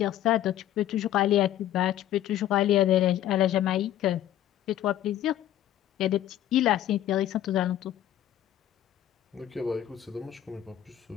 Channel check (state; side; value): quieter; right; 12.2 dB